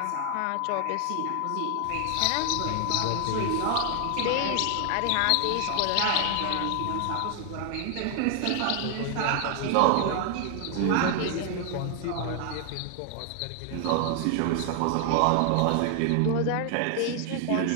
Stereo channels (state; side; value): different; both; correlation 0.00